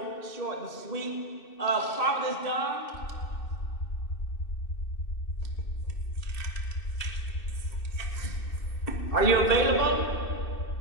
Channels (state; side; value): late; right; 2.6 ms